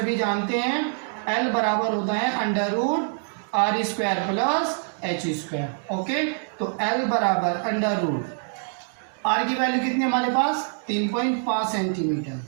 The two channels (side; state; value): left; silent; 62 dB below the other